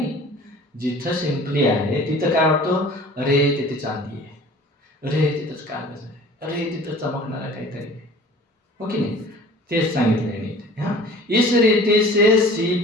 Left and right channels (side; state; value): both; normal; correlation 0.46